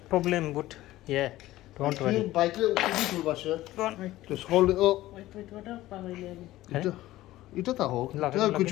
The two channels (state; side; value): quieter; right; 16.0 dB